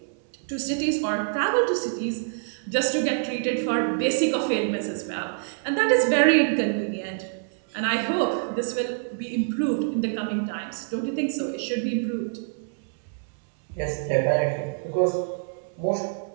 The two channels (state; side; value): silent; left; 61 dB below the other